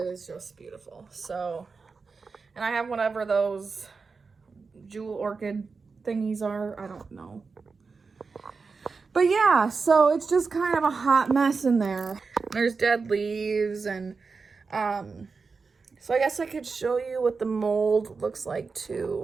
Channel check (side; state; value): left; quieter; 4.7 dB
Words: is just beautiful. So, and I have whatever those jewel orchid thingies are. I don't know. But yeah, so it's just kind of a hot mess in there. There's dead leaves and, so I guess I could show you what the mold looks like